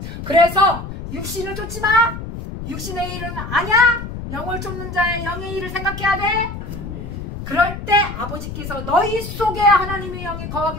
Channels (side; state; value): left; noise; rumble, 8 dB below the sound